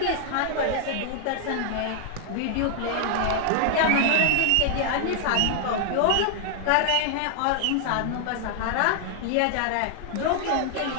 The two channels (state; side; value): different; both; correlation 0.00